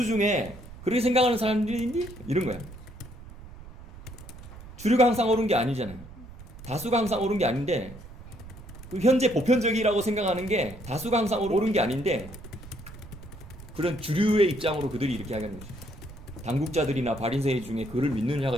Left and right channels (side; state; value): right; noise; rumble, 16 dB below the sound